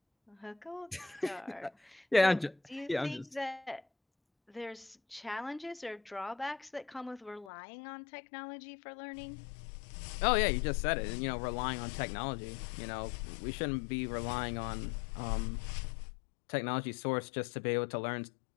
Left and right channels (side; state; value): right; drops out; at 7.5 s